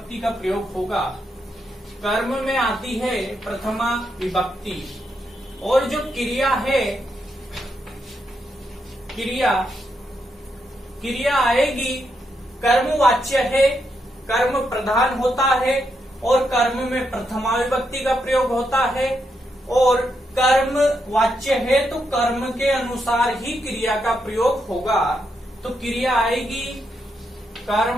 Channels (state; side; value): normal; both; correlation 0.81